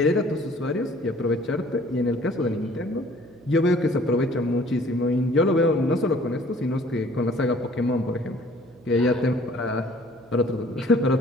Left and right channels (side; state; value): right; noise; hum, 25 dB below the sound